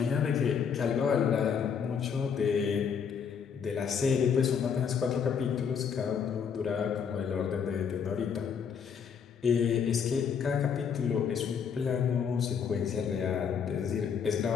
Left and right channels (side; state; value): right; quieter; 6.9 dB